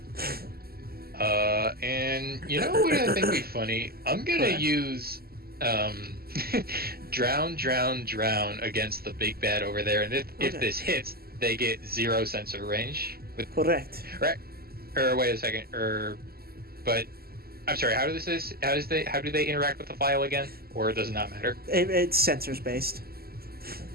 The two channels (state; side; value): late; left; 0.45 ms